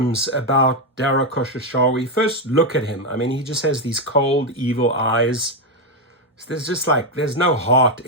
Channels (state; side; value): normal; both; correlation 0.05